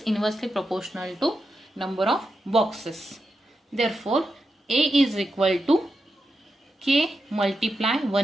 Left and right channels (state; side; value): normal; both; correlation 0.87